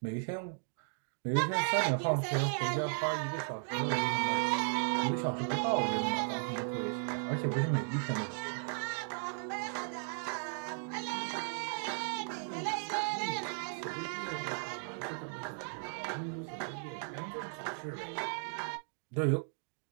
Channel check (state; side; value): silent; left; digital silence